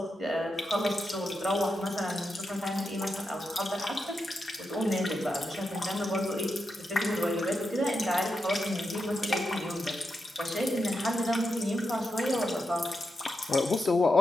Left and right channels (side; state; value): both; normal; correlation 0.86